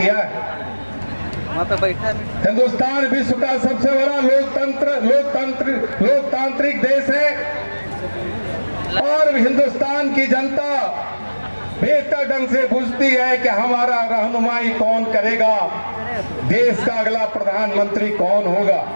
है। हिंदुस्तान विश्व का सबसे बड़ा लोकतांत्रिक देश है और हिंदुस्तान की जनता बेहतर ढंग से बुझती है कि हमारा रहनुमाई कौन करेगा, देश का अगला प्रधानमंत्री कौन होगा।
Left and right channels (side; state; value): both; inverted; correlation -1.00